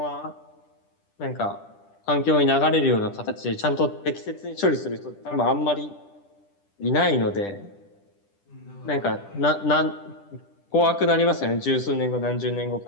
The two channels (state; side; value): late; right; 10 ms